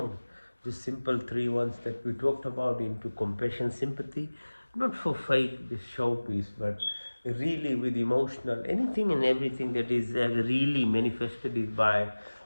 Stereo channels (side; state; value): both; inverted; correlation -1.00